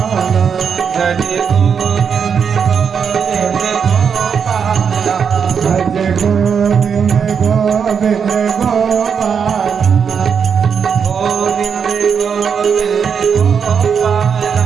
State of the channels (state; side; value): quieter; left; 6.8 dB